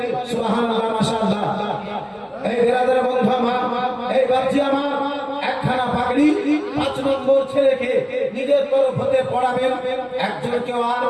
সুবহানাল্লাহ মাশাআল্লাহ এই বেরাদার বন্ধু আমার এই বাচ্চা আমার একখানা পাগড়ি 5 নম্বর ছেলেকে নিজের তরফ হতে পড়াবেন একজন কেউ আর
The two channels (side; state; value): both; identical; correlation 1.00